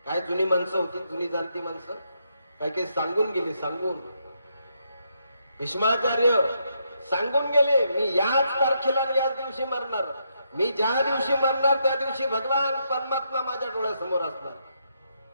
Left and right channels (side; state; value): both; inverted; correlation -0.78